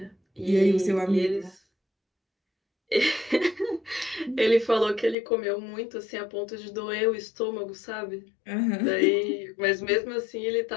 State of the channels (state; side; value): drops out; right; at 5.2 s